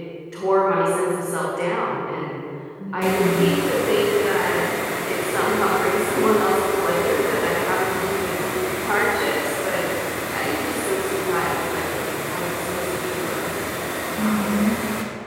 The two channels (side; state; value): both; identical; correlation 1.00